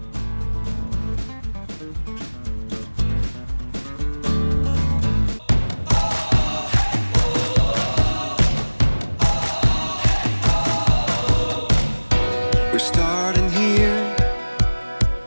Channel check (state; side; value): inverted; both; correlation -1.00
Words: We're starting here,